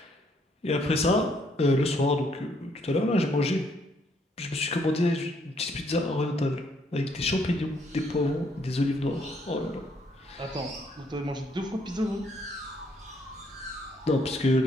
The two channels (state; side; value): normal; both; correlation 0.69